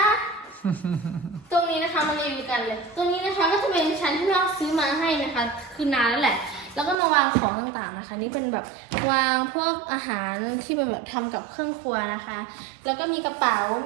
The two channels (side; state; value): left; drops out; at 7.0 s